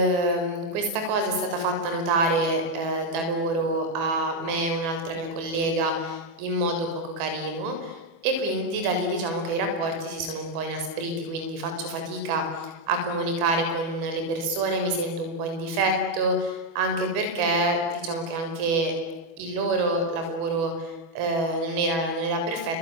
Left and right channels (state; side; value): late; left; 24 ms